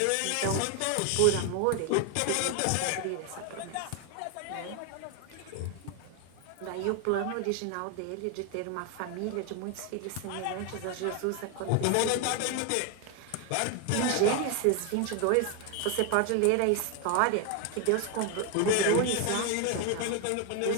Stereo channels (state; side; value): different; both; correlation 0.01